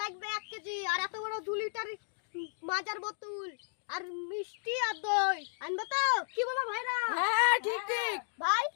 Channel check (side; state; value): right; silent; digital silence